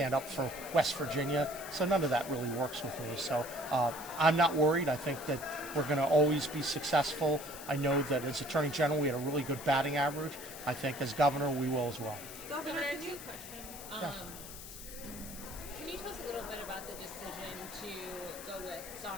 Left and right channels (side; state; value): left; noise; hiss, 12 dB below the sound